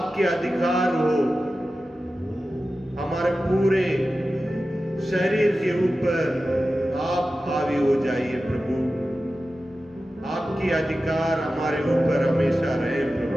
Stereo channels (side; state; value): both; normal; correlation 0.93